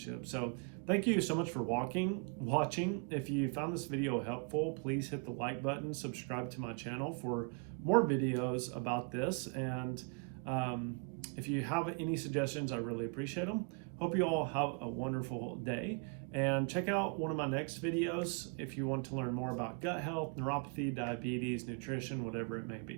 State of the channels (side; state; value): left; quieter; 35.4 dB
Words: So thank you so much for watching. If you found this video helpful, please hit the like button, subscribe to my channel for more videos about this. And if you have any suggestions, I really appreciate them. Hope you all have a wonderful day, And check out one of my next videos if you want to learn more about gut health, neuropathy, diabetes, nutrition, whatever it may